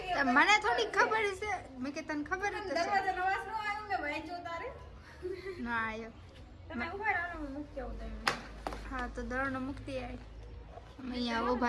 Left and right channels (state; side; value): identical; both; correlation 1.00